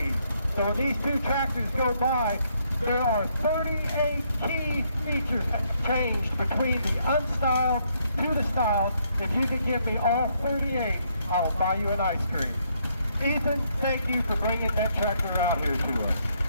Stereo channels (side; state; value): both; inverted; correlation -0.72